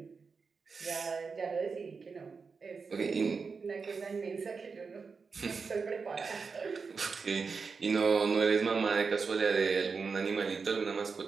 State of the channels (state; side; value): quieter; left; 5.0 dB